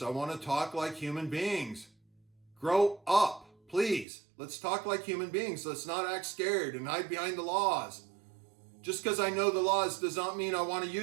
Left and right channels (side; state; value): left; drops out; at 4.0 s